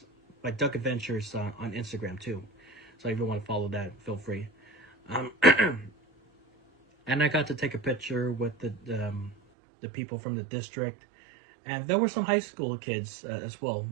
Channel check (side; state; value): left; drops out; at 9.3 s